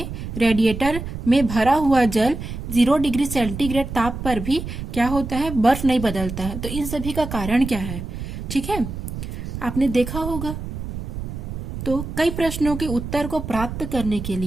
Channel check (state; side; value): noise; right; rumble, 7 dB below the sound